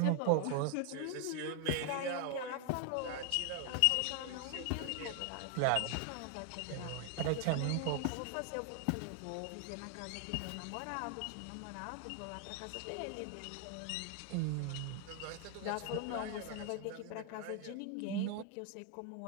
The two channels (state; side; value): different; both; correlation 0.00